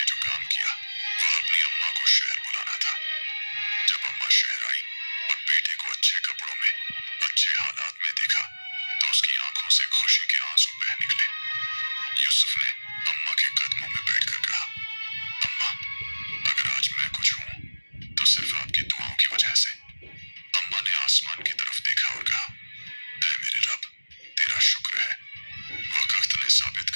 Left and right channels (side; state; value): both; inverted; correlation -1.00